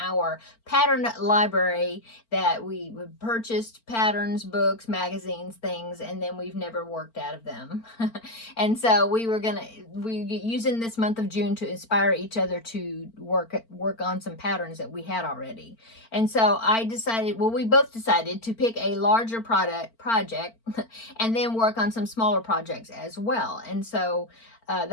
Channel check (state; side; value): late; right; 4.4 ms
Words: pattern library that we purchased patterns, books, magazines, things, and then we've never worked out of them. And so we're using this month of June to inspire each other to work on some patterns that we had already. And so we both decided to pick a larger project and then work on some smaller projects as well. And so